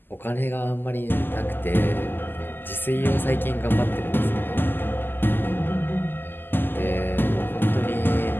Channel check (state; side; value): late; right; 0.094 ms